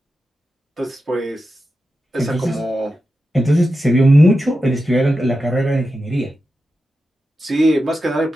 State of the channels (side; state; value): both; normal; correlation 0.91